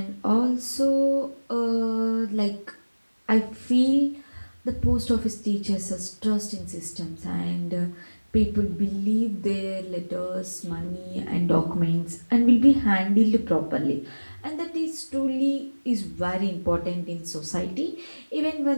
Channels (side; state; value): both; inverted; correlation -1.00